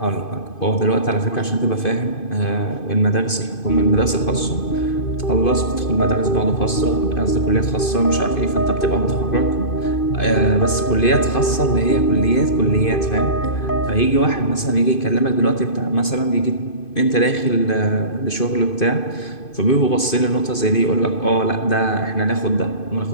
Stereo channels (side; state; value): right; late; 2.5 ms